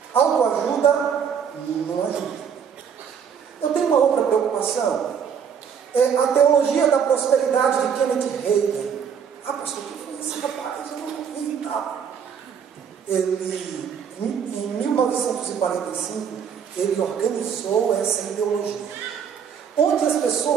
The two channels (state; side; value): quieter; left; 7.4 dB